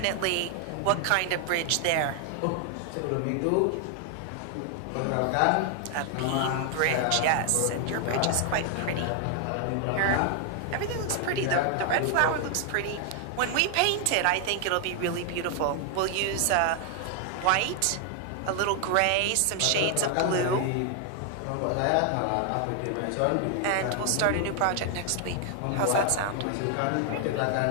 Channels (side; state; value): both; different; correlation 0.00